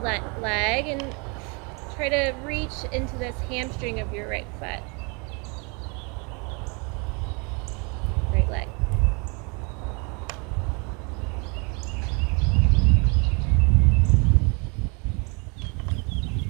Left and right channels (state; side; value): quieter; left; 32.3 dB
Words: leg and try to reach into this hamstring of your right foot. Right leg.